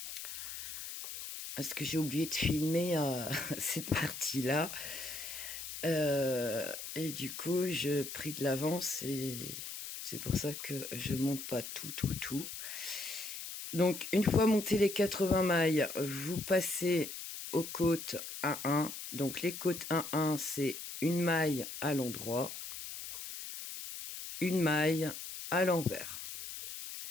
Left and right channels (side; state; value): left; noise; hiss, 8 dB below the sound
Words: parce que j'ai oublié de filmer cette partie-là, et du coup je pris de l'avance et c'est pour ça que je monte pas tout. Donc une fois monté les 80 mailles, vous passez aux côtes 1-1. Donc les côtes 1-1, c'est une maille à l'endroit, une maille à l'envers,